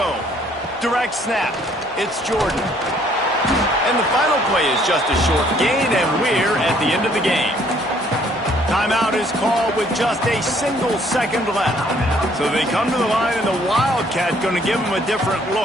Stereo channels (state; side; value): normal; both; correlation 0.62